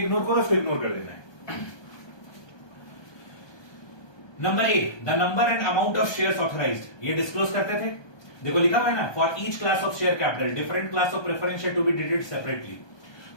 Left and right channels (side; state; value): right; late; 1.2 ms